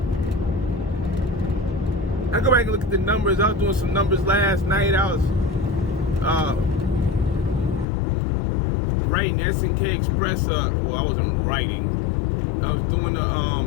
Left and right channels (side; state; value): right; drops out; at 7.9 s